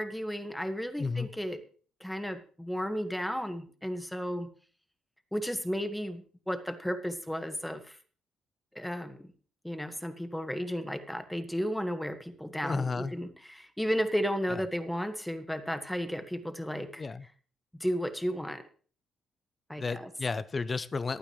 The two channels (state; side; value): normal; both; correlation 0.95